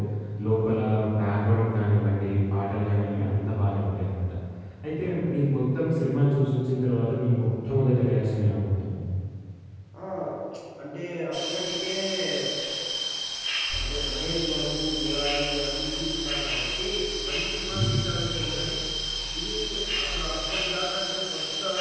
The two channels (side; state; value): both; identical; correlation 1.00